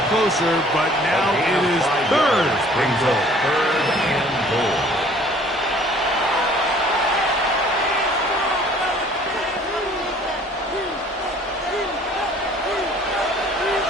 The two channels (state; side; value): normal; both; correlation 0.54